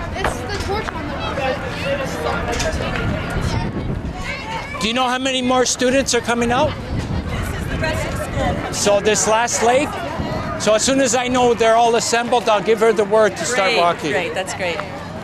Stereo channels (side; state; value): both; identical; correlation 1.00